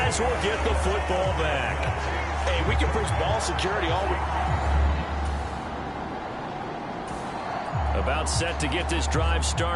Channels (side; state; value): both; identical; correlation 1.00